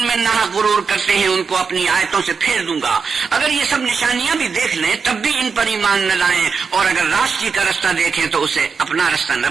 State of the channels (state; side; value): quieter; left; 5.5 dB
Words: میں ناحق غرور کرتے ہیں ان کو اپنی آیتوں سے پھیر دوں گا۔ اگر یہ سب نشانیاں بھی دیکھ لیں تب بھی ان پر ایمان نہ لائیں، اور اگر راستی کا رستہ دیکھیں تو اسے اپنا رستہ نہ